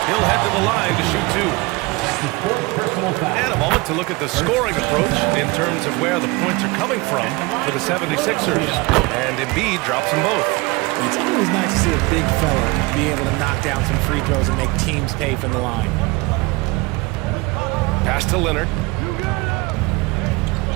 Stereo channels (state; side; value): quieter; left; 23.6 dB